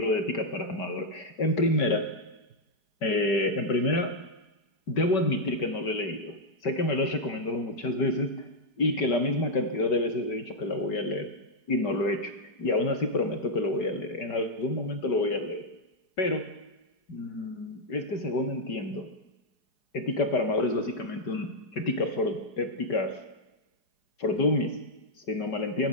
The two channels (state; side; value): late; right; 4.8 ms